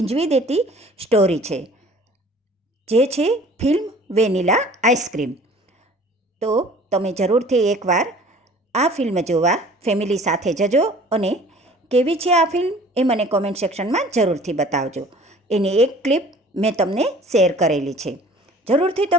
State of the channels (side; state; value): both; normal; correlation 0.49